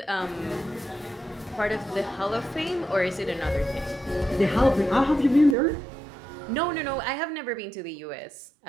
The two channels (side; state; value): left; drops out; at 5.6 s